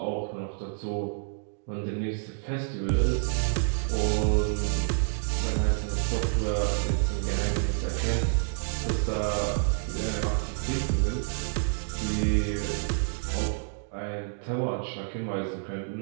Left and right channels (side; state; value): left; silent; digital silence